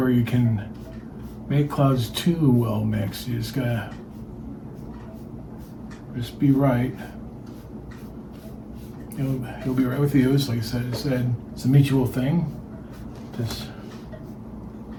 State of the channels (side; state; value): both; identical; correlation 1.00